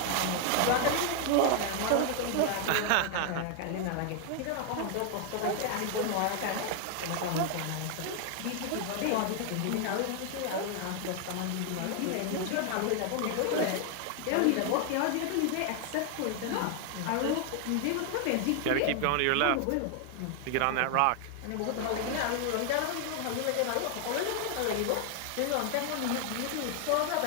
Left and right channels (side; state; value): both; different; correlation 0.00